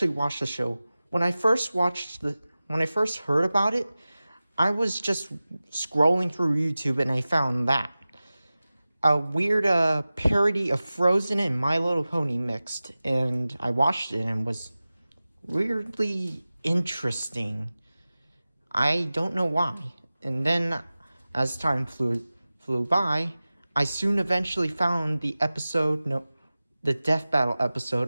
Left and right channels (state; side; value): inverted; both; correlation -0.97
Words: watched the show. When I first heard about it, I was just scrolling through YouTube and I found that. a weird parody of Frozen and My Little Pony mixed, and I watched it and was weirdly interesting. I don't know why. And then, as time flew by, I soon eventually found the Death Battle